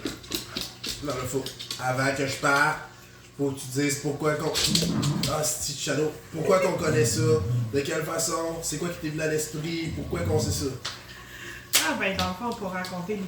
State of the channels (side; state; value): both; identical; correlation 1.00